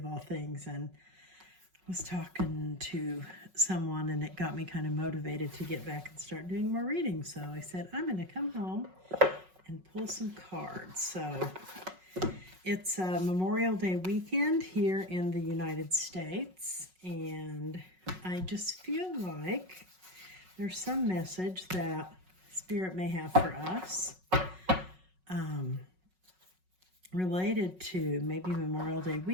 all things, and was talking to someone, and it got me kind of motivated to get back and start doing more readings. So I said I'm going to come home and pull some cards. So it's Memorial Day weekend here in the United States, and I just feel like there's some message that Spirit may have for us related to maybe Memorial Day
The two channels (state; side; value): late; left; 5.4 ms